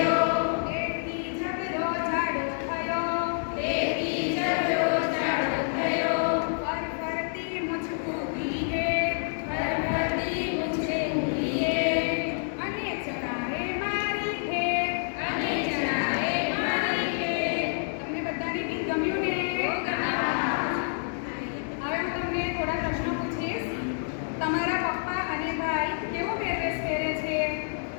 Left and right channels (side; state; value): right; silent; digital silence